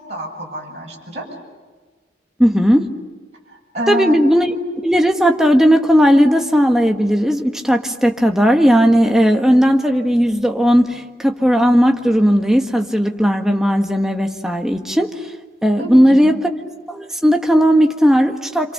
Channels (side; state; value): both; normal; correlation 0.92